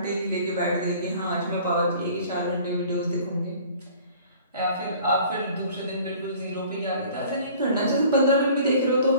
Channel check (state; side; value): inverted; both; correlation -0.50